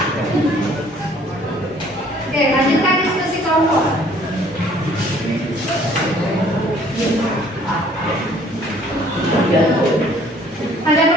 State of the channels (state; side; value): normal; both; correlation 0.57